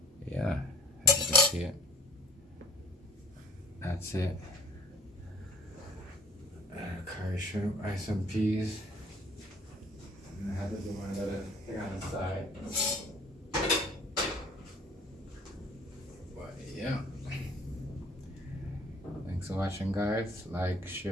yeah, as you can see it, that's it. Curry shrimp rice and peas. And I had to do my little thing on the side. Yeah. Thanks for watching, guys. Like,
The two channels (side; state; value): both; normal; correlation 0.51